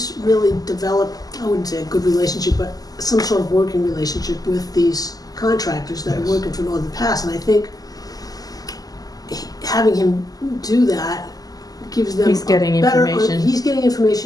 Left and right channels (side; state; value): right; late; 0.18 ms